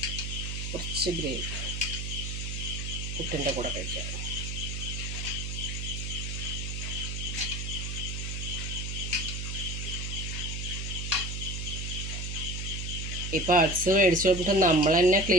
കുറച്ച് ഗ്രേവി പുട്ടിൻ്റെ കൂടെ കഴിക്കാം. ഈ പാർട്സ് മേടിച്ച് കൊടുത്തിട്ട് നമ്മൾ തന്നെ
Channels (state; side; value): noise; right; hum, 4 dB below the sound